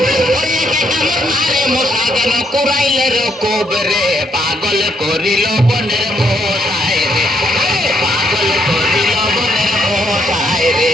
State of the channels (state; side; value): normal; both; correlation 0.73